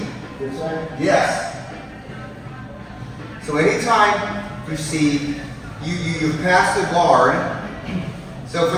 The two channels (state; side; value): identical; both; correlation 1.00